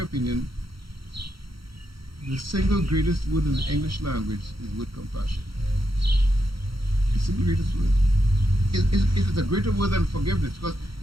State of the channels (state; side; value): late; left; 0.74 ms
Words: the single greatest word in the English language is the word compassion. The single greatest word. It is a greater word than forgiveness, because